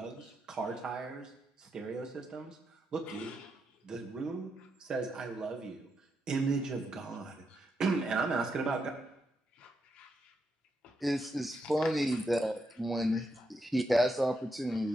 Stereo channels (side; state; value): both; normal; correlation 0.83